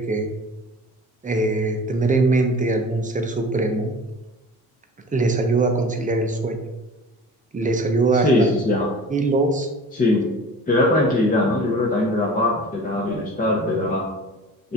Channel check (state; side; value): normal; both; correlation 0.41